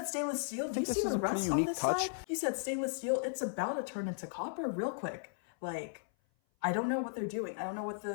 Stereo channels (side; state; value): right; silent; 54 dB below the other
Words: stainless steel? Do you see the rust on this side? You said stainless steel. It's about to turn into copper real quick. Like, I don't know what they're doing. I don't know what